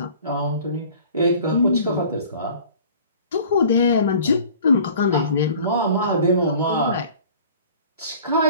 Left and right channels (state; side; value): inverted; both; correlation -0.47